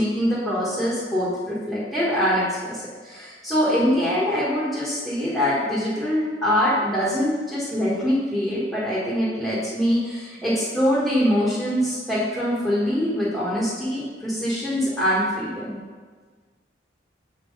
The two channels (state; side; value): normal; both; correlation 0.59